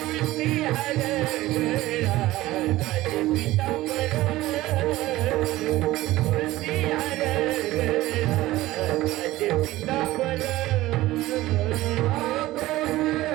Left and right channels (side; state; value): left; quieter; 17.1 dB